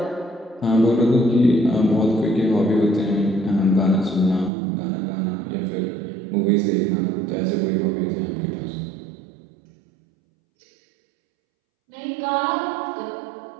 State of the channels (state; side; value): drops out; left; at 4.5 s